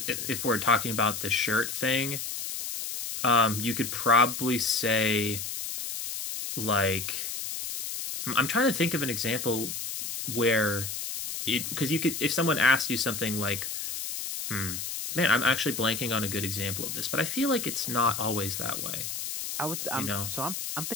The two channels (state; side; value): noise; left; hiss, 5 dB below the sound